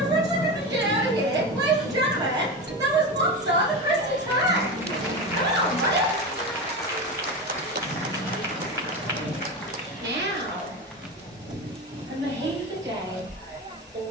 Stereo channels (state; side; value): normal; both; correlation 0.22